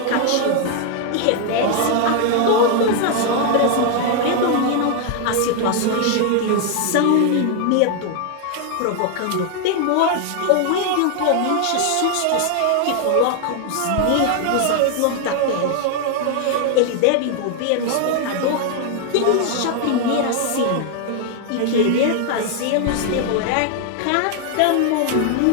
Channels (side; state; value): both; different; correlation 0.00